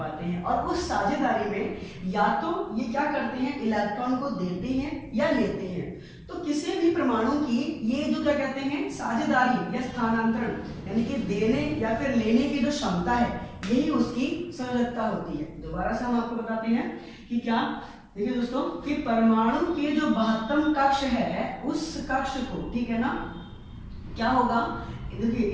हैं। और उस साझेदारी में या तो ये क्या करते हैं, इलेक्ट्रॉन को देते हैं या लेते हैं। तो किसी भी परमाणु की ये जो क्या कहते हैं, साझेदारी या स्थानांतरण, यानी कि देने या फिर लेने की जो क्षमता है, यही उसकी संयोजकता होती है। दोबारा से हम आपको बताते हैं कि क्या, देखिए दोस्तों, कि परमाणु के जो महत्तम कक्ष है उस कक्ष को, ठीक है ना, क्या होगा, देखिए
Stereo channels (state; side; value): identical; both; correlation 1.00